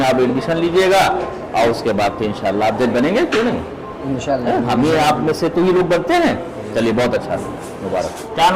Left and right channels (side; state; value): both; identical; correlation 1.00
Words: आप एडमिशन लीजिएगा, और उसके बाद फिर इंशाल्लाह आप जज बनेंगे, क्यों नहीं? इंशाल्लाह। हम ये आप में से तो ही लोग बनते हैं। चलिए बहुत अच्छा, मुबारक। क्या